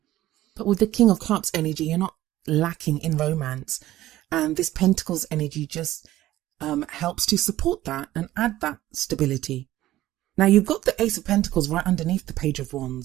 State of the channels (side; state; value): left; quieter; 14.9 dB